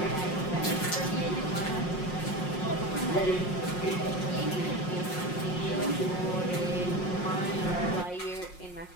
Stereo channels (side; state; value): right; late; 5.5 ms